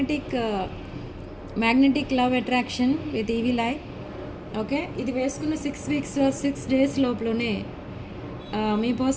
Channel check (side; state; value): both; identical; correlation 1.00